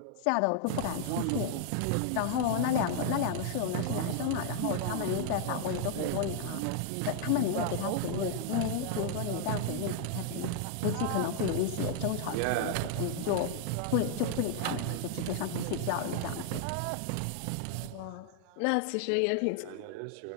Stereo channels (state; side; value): different; both; correlation 0.00